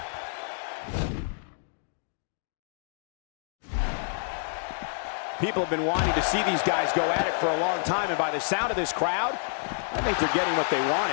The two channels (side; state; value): right; silent; digital silence